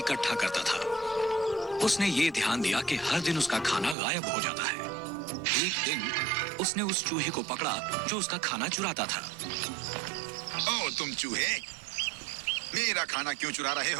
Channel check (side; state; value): left; drops out; at 4.0 s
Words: करता था। उसने ये ध्यान दिया कि हर दिन उसका खाना गायब हो जाता है। एक दिन उसने उस चूहे को पकड़ा जो उसका खाना चुराता था। ओ तुम चूहे, मेरा खाना क्यों चुरा रहे